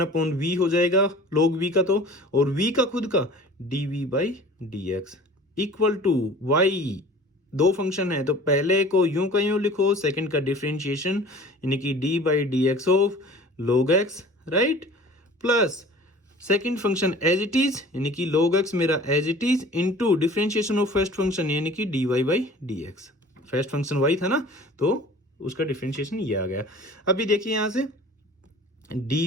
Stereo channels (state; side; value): normal; both; correlation 0.44